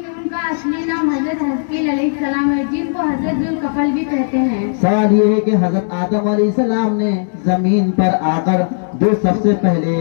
उनका असली नाम हजरत हस्कील अलैहिस्सलाम है, जिनको हजरत जुल्कफल भी कहते हैं। सवाल ये है कि हजरत आदम अलैहिस्सलाम ने जमीन पर आकर जो सबसे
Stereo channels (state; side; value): silent; right; 69 dB below the other